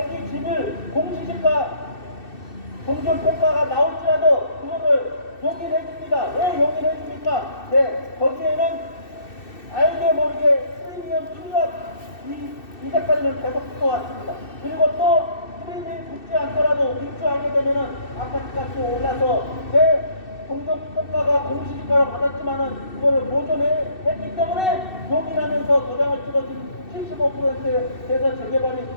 집을 공시지가 공정평가가 나올지라도 그거를 용인해 줍니다. 왜 용인해 줍니까? 네, 거기에는 알게 모르게 프리미엄 투자 이제까지는 계속 붙어왔습니다. 그리고 또 프리미엄이 붙지 않더라도 입주하게 되면은 아파트 값이 올라서 내 공정평가가 공시지가로 받았지만은 그거를 보존했기 때문에 용인하면서 도장을 찍어준 75%에서 재개발이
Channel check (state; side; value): late; right; 2.6 ms